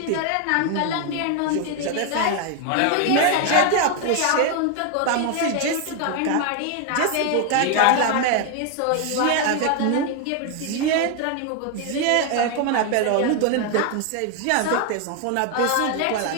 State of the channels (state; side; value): different; both; correlation 0.01